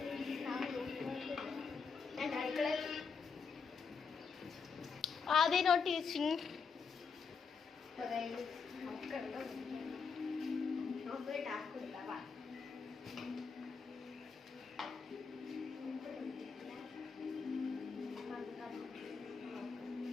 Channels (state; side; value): quieter; right; 5.4 dB